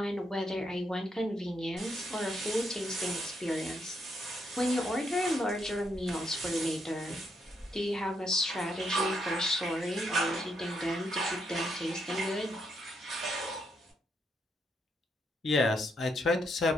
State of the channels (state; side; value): normal; both; correlation 0.77